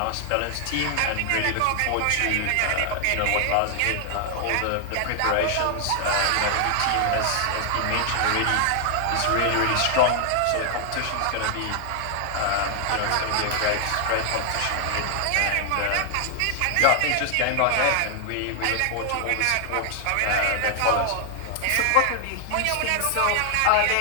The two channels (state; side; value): different; both; correlation 0.00